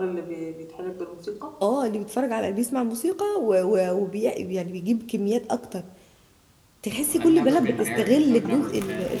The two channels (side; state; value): both; identical; correlation 1.00